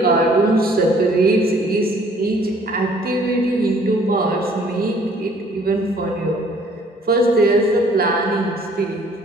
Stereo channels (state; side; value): normal; both; correlation 0.58